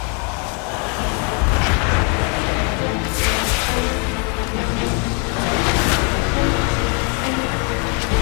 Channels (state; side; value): quieter; right; 37.0 dB